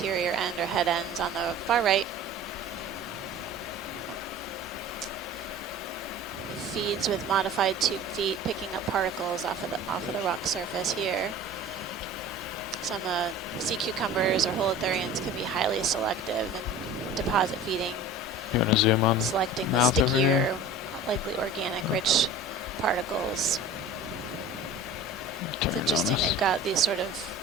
end or head ends on the far right. It feeds with modified tube feet, picking up particles off of the rock surface here. Some sea cucumbers or holothurians can be highly selective and deposit feeding. You want to zoom on? Selecting the mouth over stickier, here? likely organic rich particles. It's interesting, they've got these sort of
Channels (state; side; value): normal; both; correlation 0.39